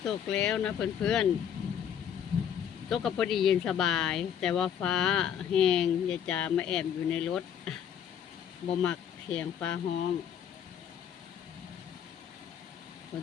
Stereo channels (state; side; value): quieter; right; 8.8 dB